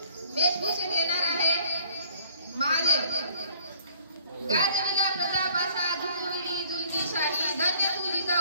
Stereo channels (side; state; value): both; inverted; correlation -0.59